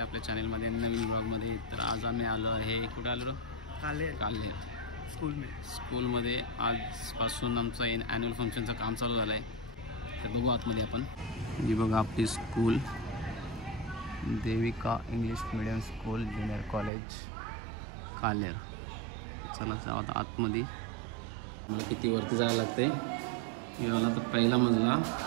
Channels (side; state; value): left; drops out; at 16.9 s